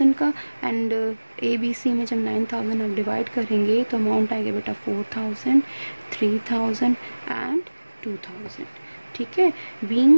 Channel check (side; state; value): both; inverted; correlation -1.00